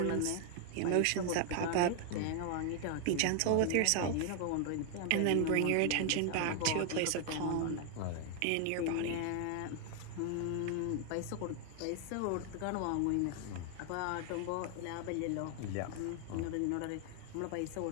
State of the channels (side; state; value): both; different; correlation 0.00